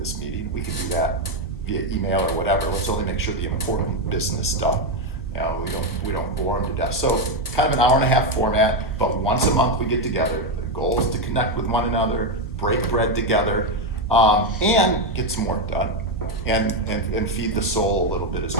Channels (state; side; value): normal; both; correlation 0.07